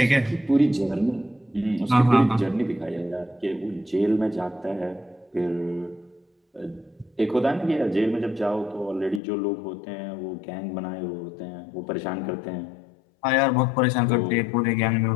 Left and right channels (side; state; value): right; drops out; at 9.2 s